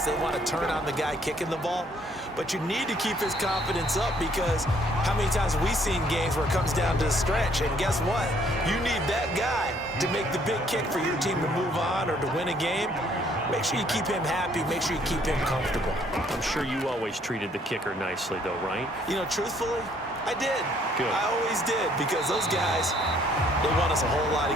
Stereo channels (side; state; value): both; normal; correlation 0.64